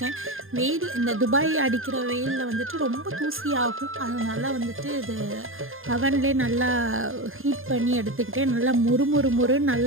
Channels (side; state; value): left; late; 0.60 ms